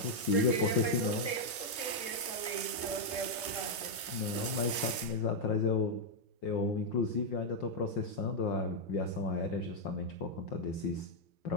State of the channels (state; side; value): normal; both; correlation -0.01